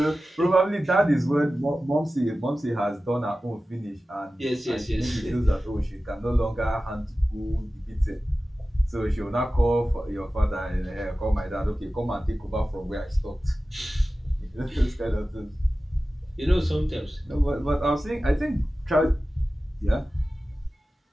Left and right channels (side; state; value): both; normal; correlation 0.95